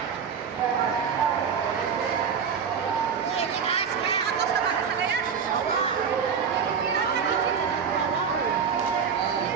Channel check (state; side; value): quieter; left; 6.7 dB